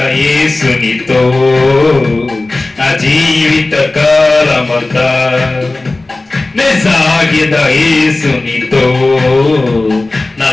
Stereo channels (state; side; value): quieter; right; 3.1 dB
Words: యేసునితో నా జీవిత కాలమంతా సాగెద యేసునితో నా